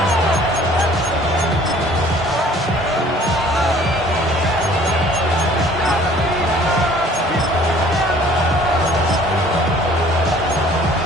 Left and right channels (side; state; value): both; normal; correlation 0.53